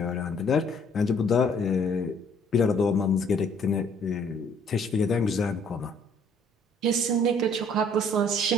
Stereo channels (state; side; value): normal; both; correlation 0.61